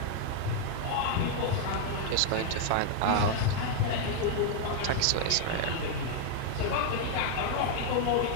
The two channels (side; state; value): both; different; correlation 0.00